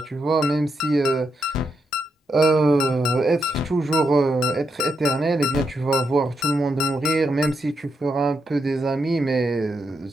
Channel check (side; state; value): both; normal; correlation 0.82